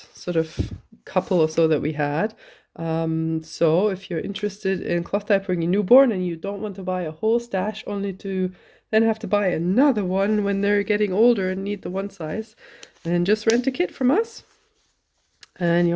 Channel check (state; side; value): identical; both; correlation 1.00